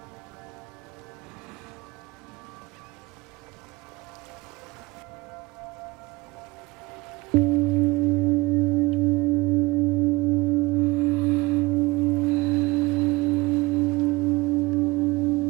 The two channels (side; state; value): left; quieter; 21.8 dB